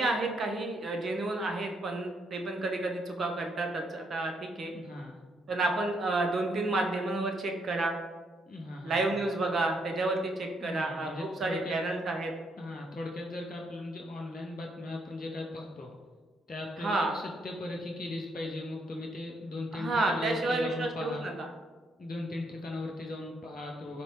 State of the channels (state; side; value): normal; both; correlation 0.74